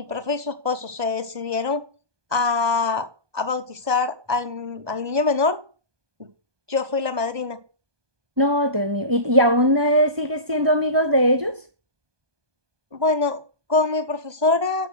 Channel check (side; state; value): left; late; 1.2 ms